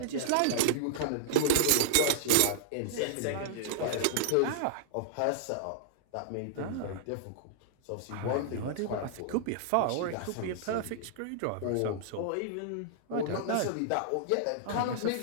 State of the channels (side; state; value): both; different; correlation -0.01